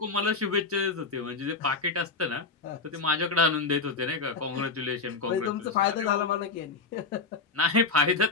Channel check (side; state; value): right; quieter; 4.1 dB